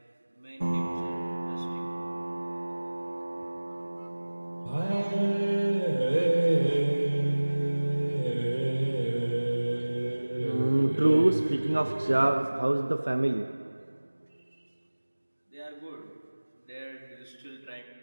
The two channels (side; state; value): both; inverted; correlation -1.00